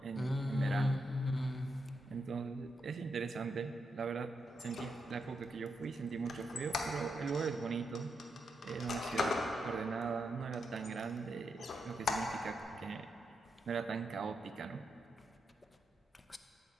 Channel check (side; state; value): both; normal; correlation 0.83